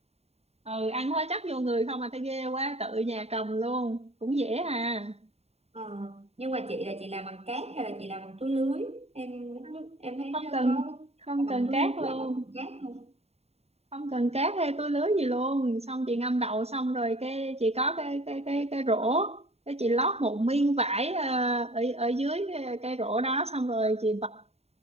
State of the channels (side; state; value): left; late; 0.30 ms